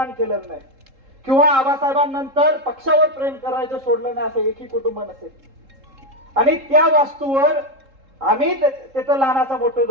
केलं नाही किंवा आबासाहेबांनंतर पक्षावर प्रेम करायचं सोडलं नाही असं एकही कुटुंब नसेल। आणि त्या वास्तूवर आम्ही तिथं लहानाचा मोठं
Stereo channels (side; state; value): left; late; 3.7 ms